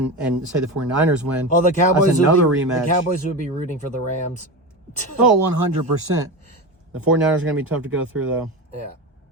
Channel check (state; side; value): normal; both; correlation 0.22